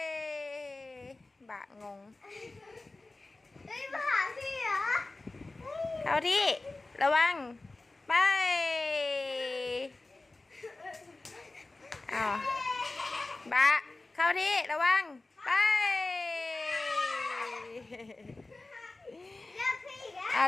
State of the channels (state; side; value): quieter; right; 3.2 dB